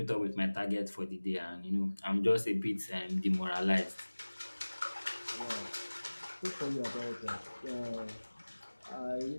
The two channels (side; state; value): both; inverted; correlation -1.00